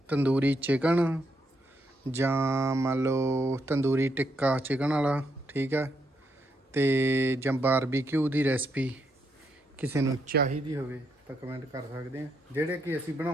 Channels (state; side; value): normal; both; correlation 0.78